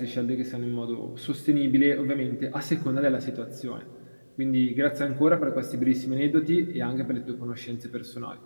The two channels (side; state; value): both; inverted; correlation -1.00